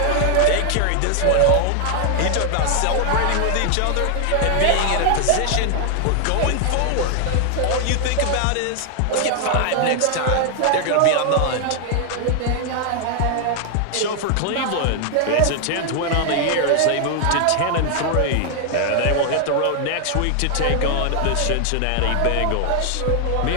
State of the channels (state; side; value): different; both; correlation 0.00